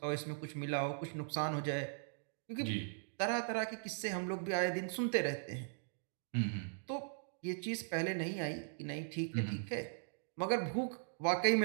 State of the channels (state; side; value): silent; left; digital silence